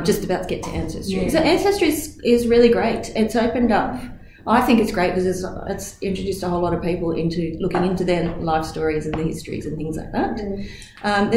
just about to get to Ancestry. Yeah. So Ancestry is really great. It's opened up. I think it's great because it's introduced a whole lot of people into looking into their life stories and the histories and things like that.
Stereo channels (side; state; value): both; identical; correlation 1.00